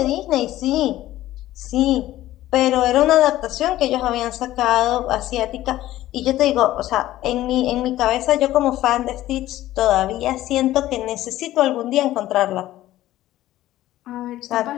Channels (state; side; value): quieter; right; 14.8 dB